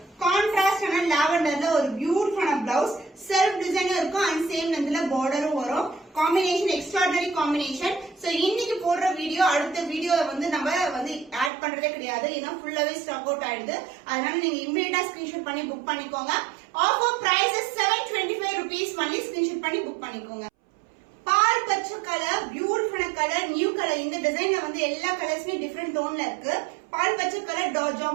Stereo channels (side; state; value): left; drops out; at 11.5 s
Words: கான்ட்ராஸ்ட் ஆன லாவெண்டர்ல ஒரு பியூட்டிஃபுல்லான பிளவுஸ். செல்ஃப் டிசைனும் இருக்கும். அண்ட் சேம் லென்த்ல பார்டரும் வரும். Combination extraordinary combination. சோ இன்னைக்கு போடுற வீடியோ அடுத்த வீடியோல வந்து நம்ம வந்து ஆட் பண்றதே கிடையாது. ஏன்னா ஃபுல்லாவே ஸ்டாக் அவுட் ஆயிடுது. அதனால நீங்க இமிடியேட்டா ஸ்கிரீன்ஷாட் பண்ணி புக் பண்ணிக்கோங்க. Offer price 725 rupees only. Screenshot பண்ணி புக் பண்ணிக்கோங்க. பால் பச்சை கலர், பியூட்டிஃபுல்லான கலர், நியூ கலர். இந்த டிசைன்ல வந்து எல்லா கலர்ஸுமே டிஃபரெண்ட் டோன்ல இருக்கு. பால் பச்சை கலர்